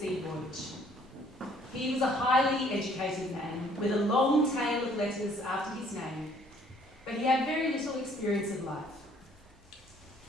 voyage. He was a highly educated man with a long tail of letters after his name, but he had very little experience of life.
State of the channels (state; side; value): normal; both; correlation 0.61